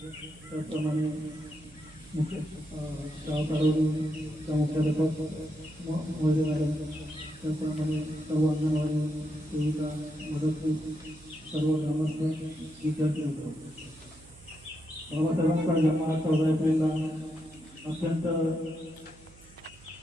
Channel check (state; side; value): noise; right; hum, 23 dB below the sound